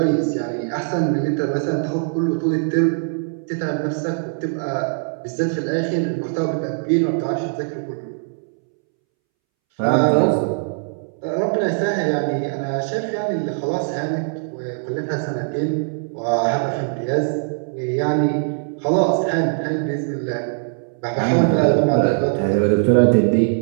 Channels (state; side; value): silent; left; 65 dB below the other